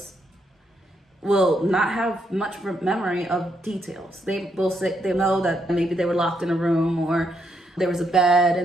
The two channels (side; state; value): both; normal; correlation 0.77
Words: will not have much memory of details. They will say they know that maybe they were locked in a room or there was a bed